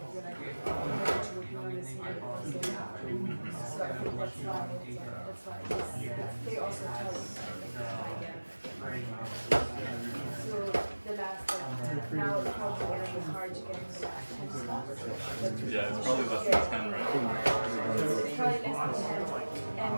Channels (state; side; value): inverted; both; correlation -1.00